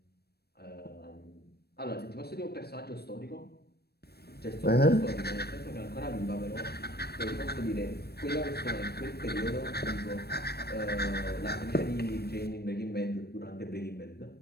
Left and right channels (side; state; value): right; late; 0.47 ms